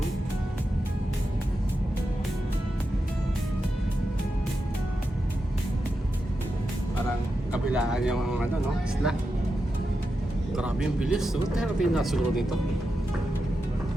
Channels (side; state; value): both; normal; correlation 0.89